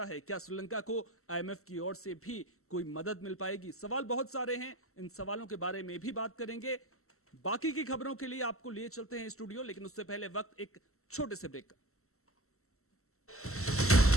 है? क्या श्रीलंका को आईएमएफ की ओर से भी कोई मदद मिल पाएगी? सवाल बहुत सारे हैं, इन सवालों के बारे में भी बात करेंगे। बाकी की खबरों के लिए आपको लिए चलते हैं स्टूडियो, लेकिन उससे पहले वक्त एक छोटे से ब्रेक का।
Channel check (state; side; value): late; right; 0.63 ms